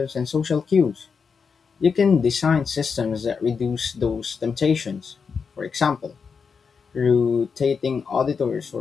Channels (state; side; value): quieter; right; 5.7 dB